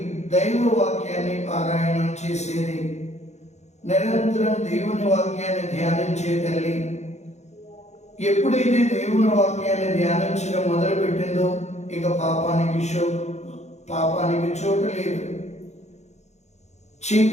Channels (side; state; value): right; late; 0.33 ms